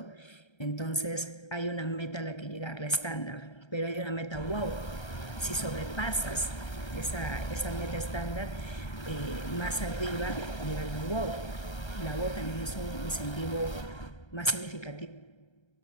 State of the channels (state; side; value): late; right; 1.3 ms